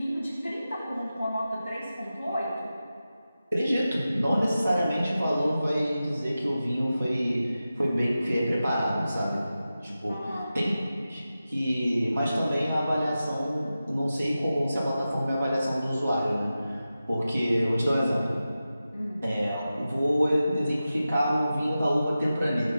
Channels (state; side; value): inverted; both; correlation -0.93